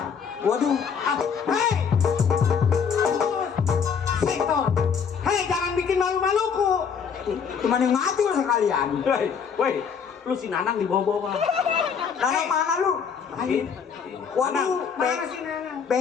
Waduh, Hei! Sektor. Hei, jangan bikin malu-maluku. cuman yang mati lu sekalian. Woi, lu si Nanang di bawah-bawah. Nanang mana lu? Ini. Waduh, Mana sih Nana?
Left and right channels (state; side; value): quieter; right; 6.6 dB